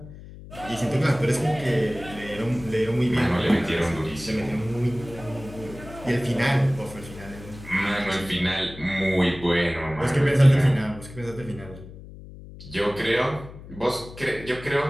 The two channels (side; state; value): left; noise; hum, 16 dB below the sound